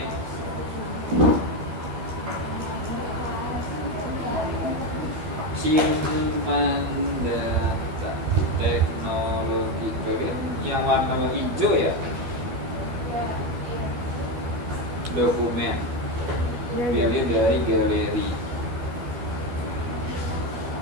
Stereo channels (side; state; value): left; late; 12 ms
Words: Simpan data teknologi kalian yang warna hijau ya. Dokumen. Pilih dari galeri.